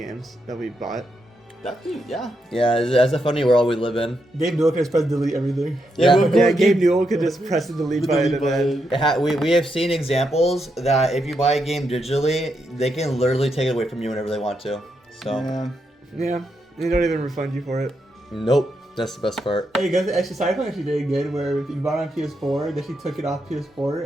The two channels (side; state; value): both; normal; correlation 0.82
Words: that we bought? Yeah. Yeah, that's a funny world we live in. Gabe Newell can just press delete everything. Yeah, Gabe Newell could just press the delete button and then. We have seen examples that if you buy a game digitally, they can literally take it away from you whenever they want to. So, Yeah, they don't even refund you for it. nope, that's the best part. Hey guys, actually Cyberpunk actually did good where if you bought it on PS4, they actually took it off